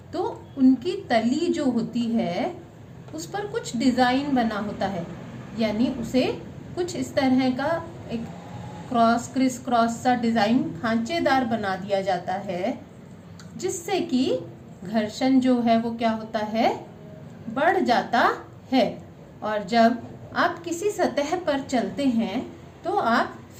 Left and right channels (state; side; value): identical; both; correlation 1.00